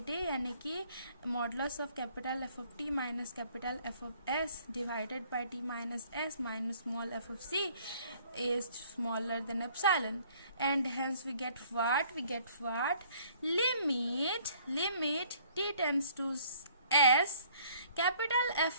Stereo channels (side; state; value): both; inverted; correlation -0.58